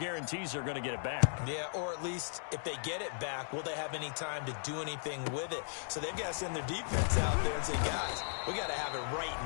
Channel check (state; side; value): silent; right; digital silence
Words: they're going to get it back. Yeah, or at least if they get it back, will they have any time to do anything with it? So they've got to send their defense out there and say, guys, we got to have it